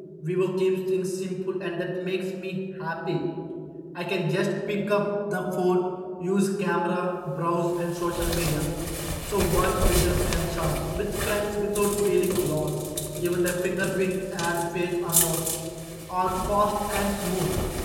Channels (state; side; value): identical; both; correlation 1.00